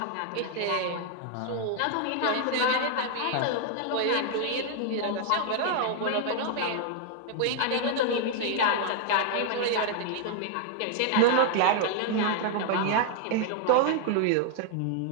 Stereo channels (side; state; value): both; different; correlation 0.00